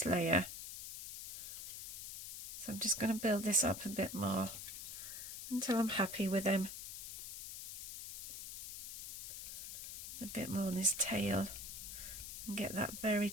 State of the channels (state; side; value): noise; left; hiss, 7 dB below the sound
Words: layer. So I'm just going to build this up a bit more until I'm happy with him. A bit more on his tail and get that very